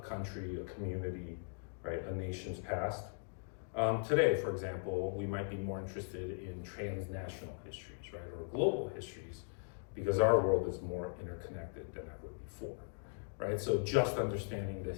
a community, right, a nation's past. Today, for example, we might be more interested in transnational histories, right, or global histories, because our world is more interconnected than ever before, right? So just understanding the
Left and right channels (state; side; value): silent; right; digital silence